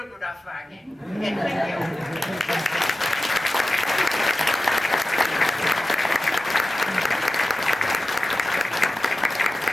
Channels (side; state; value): both; normal; correlation 0.94